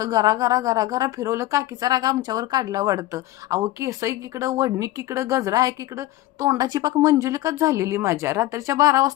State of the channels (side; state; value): right; quieter; 16.2 dB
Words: गरा गरा गरा गरा फिरवलं, काकीचा राग आमच्यावर काढला वाटतं. अहो केस इकडं, वडणी इकडं, गजरा आहे इकडं, तोंडाची पाक मंजुलिकाच झालेली माझ्या. रात्रीच्या 12